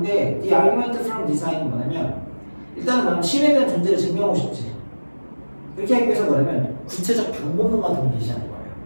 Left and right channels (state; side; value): inverted; both; correlation -1.00